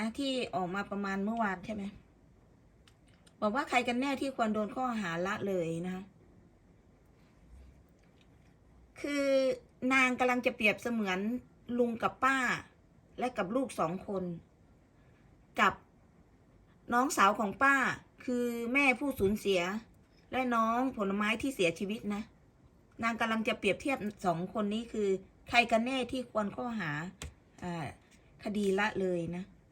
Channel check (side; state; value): both; identical; correlation 1.00